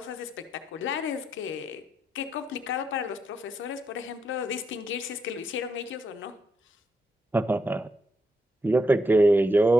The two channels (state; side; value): normal; both; correlation 0.81